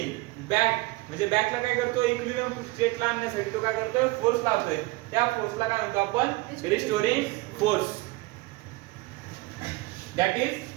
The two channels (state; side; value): quieter; left; 21.5 dB